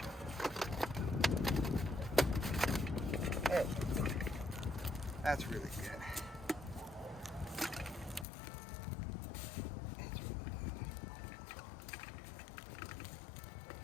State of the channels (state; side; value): drops out; right; at 8.2 s